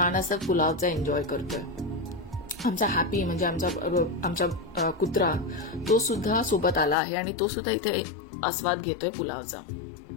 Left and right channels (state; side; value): drops out; right; at 7.0 s